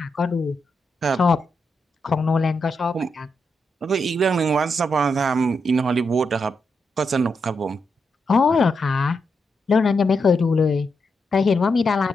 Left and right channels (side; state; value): both; normal; correlation 0.83